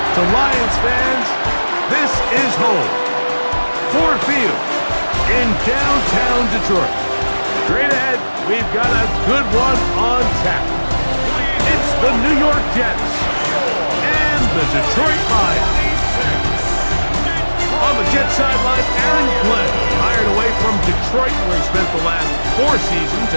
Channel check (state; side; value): inverted; both; correlation -1.00